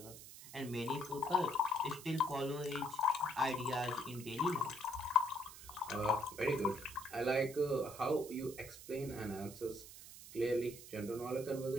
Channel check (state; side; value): noise; right; hiss, 15 dB below the sound